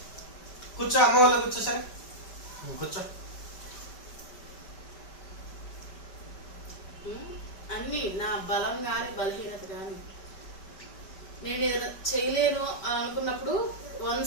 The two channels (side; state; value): right; late; 5.1 ms